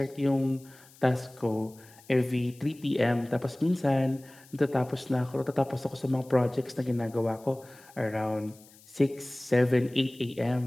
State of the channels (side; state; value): left; noise; hiss, 25 dB below the sound